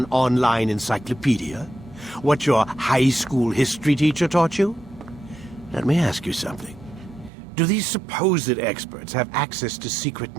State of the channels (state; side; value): drops out; left; at 7.3 s